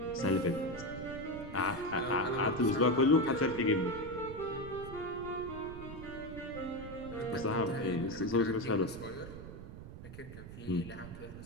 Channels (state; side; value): noise; right; rumble, 12 dB below the sound